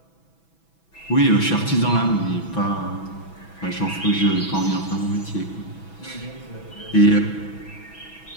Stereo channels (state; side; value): late; right; 6.1 ms